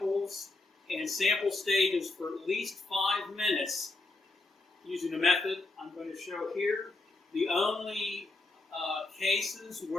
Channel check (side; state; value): right; quieter; 3.2 dB